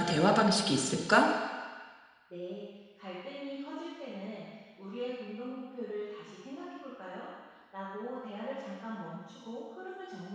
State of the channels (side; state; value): both; identical; correlation 1.00